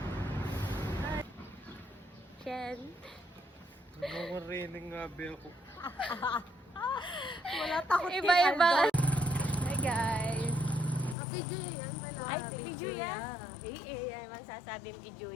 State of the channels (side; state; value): right; drops out; at 11.2 s